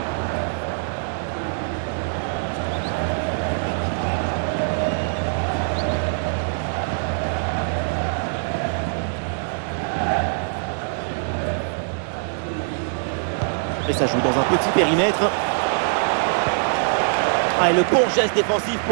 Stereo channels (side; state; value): left; silent; 63 dB below the other